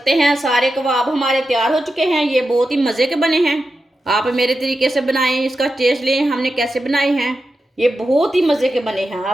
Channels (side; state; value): both; normal; correlation 0.90